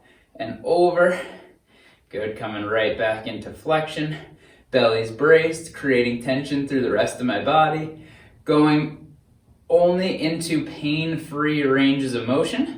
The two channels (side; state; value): both; identical; correlation 1.00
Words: and over. Good, coming right back into flexion. Belly's braced, creating tension through the rest of my body. Going only into pain-free ranges of motion.